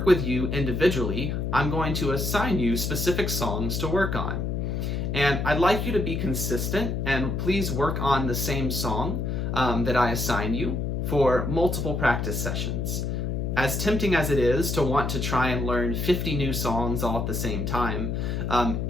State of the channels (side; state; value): left; noise; hum, 1 dB below the sound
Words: with you individually, I'm going to assign you specific songs to work on. And I'd like you to be consistent and please work on the same song that I assign you for multiple practice sessions. as tempting as it is to want to try and learn 50 new songs all at the same time,